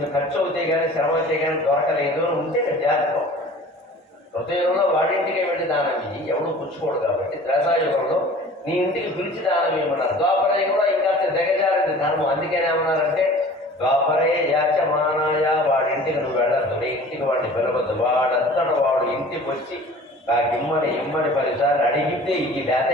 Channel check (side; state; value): both; normal; correlation 0.45